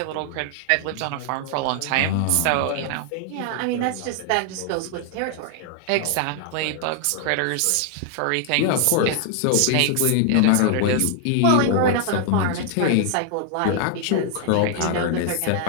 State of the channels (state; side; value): different; both; correlation 0.00